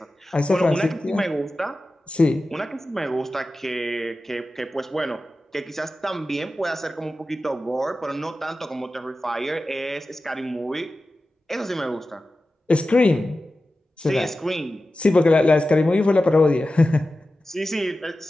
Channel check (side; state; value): both; normal; correlation 0.94